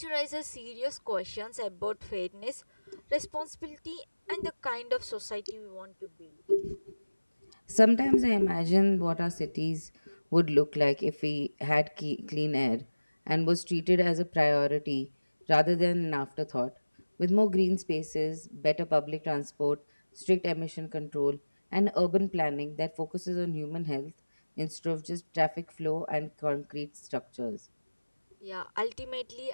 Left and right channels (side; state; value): both; inverted; correlation -1.00